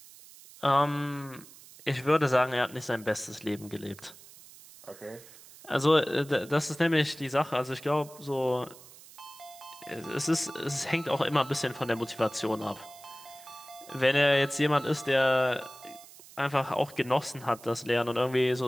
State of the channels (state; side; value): noise; right; hiss, 20 dB below the sound